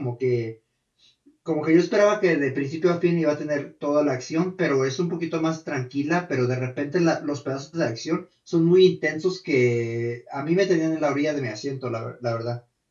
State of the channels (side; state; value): both; identical; correlation 1.00